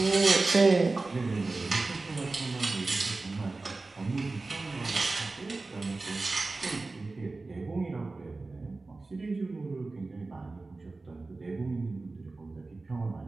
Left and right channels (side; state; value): left; quieter; 3.5 dB